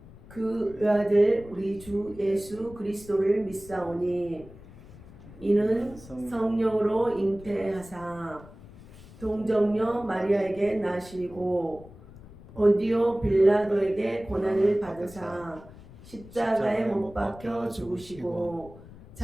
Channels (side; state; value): left; noise; rumble, 19 dB below the sound